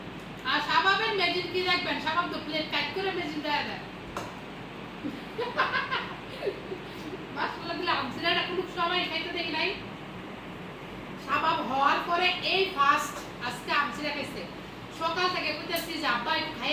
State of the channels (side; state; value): both; identical; correlation 1.00